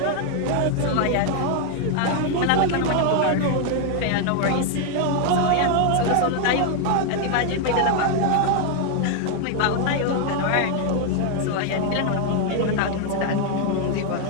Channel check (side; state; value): both; different; correlation 0.00